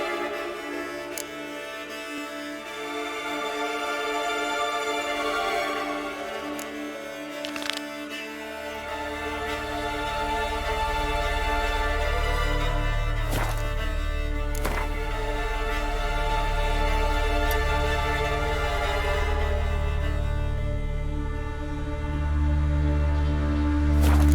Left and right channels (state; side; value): identical; both; correlation 1.00